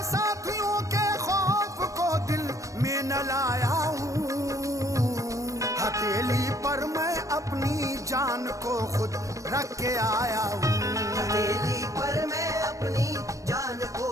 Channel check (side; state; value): left; late; 0.16 ms